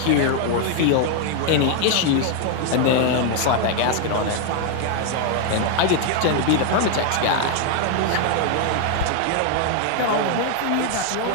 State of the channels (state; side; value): different; both; correlation 0.00